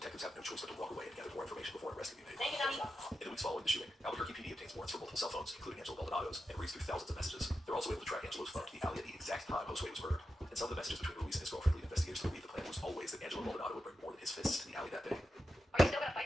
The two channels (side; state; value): both; normal; correlation 0.89